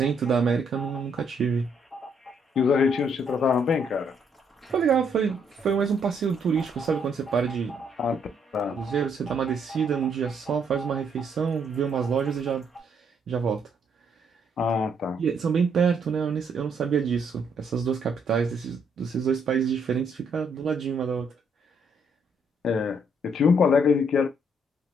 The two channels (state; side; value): normal; both; correlation 0.71